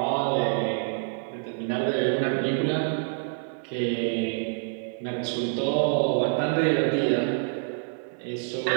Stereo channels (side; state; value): left; silent; digital silence